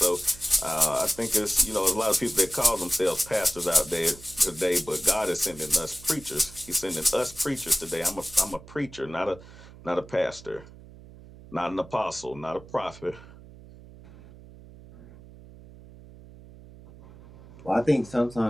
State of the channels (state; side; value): noise; right; hum, 19 dB below the sound